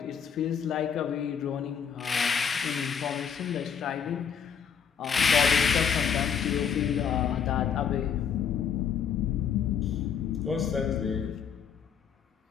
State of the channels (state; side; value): quieter; right; 7.4 dB